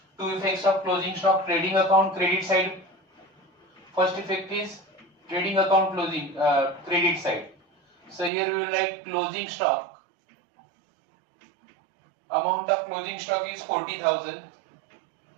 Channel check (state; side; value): drops out; left; at 8.3 s